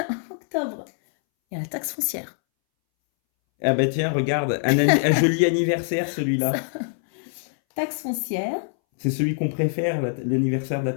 Octobre. Il y a la taxe foncière. Ah bah tiens, regarde, un joli anniversaire celui-là. Taxe foncière. C'est celui qu'on préfère, l'anniversaire de la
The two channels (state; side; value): silent; right; 62 dB below the other